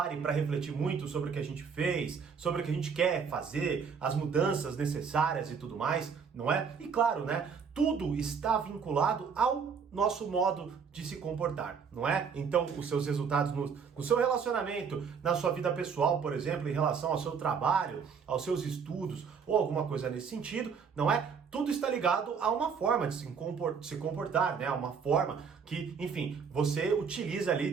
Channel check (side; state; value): left; quieter; 6.2 dB